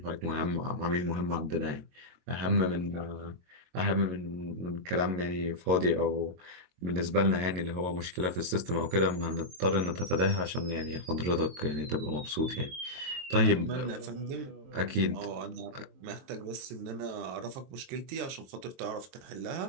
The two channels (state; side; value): late; left; 22 ms